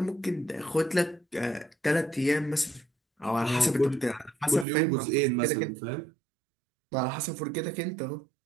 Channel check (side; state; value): left; drops out; at 4.7 s